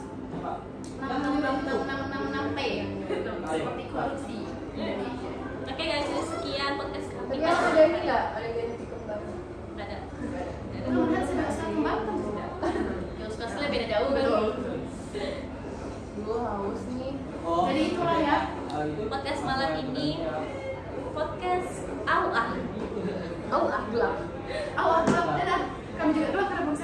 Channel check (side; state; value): both; identical; correlation 1.00